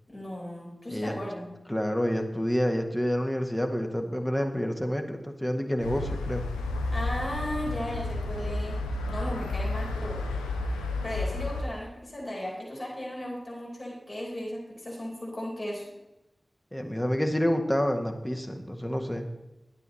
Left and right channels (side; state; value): both; normal; correlation 0.94